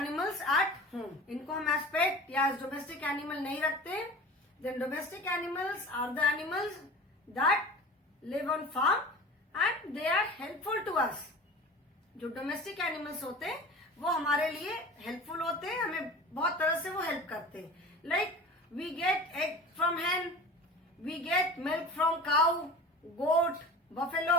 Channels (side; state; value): both; normal; correlation 0.37